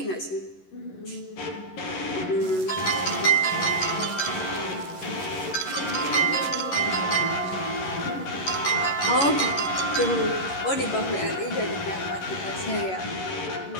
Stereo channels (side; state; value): right; late; 11 ms